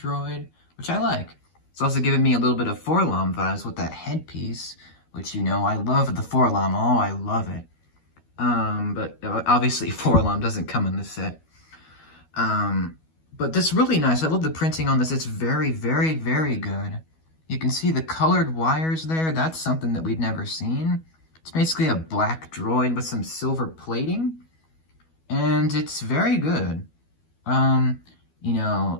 droid, which I like. It's also giving me a little bit of Forlom vibes with that headpiece, which, you know, I love the Forlom. Oh, I love it. But obviously Forlom doesn't come in this set. But this is really nice. I love the printing on this. It's very, very, very good. You can see the colored wires there. That's something that we've never seen. It's basically a black droid with some silver plating, and it's very good. You know,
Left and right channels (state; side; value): late; right; 12 ms